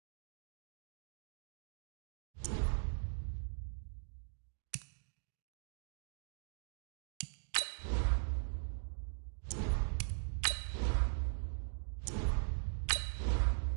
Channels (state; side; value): silent; left; digital silence